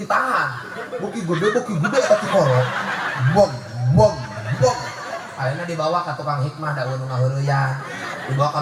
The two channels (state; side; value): identical; both; correlation 1.00